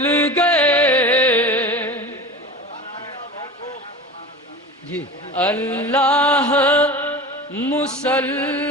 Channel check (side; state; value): both; normal; correlation 0.33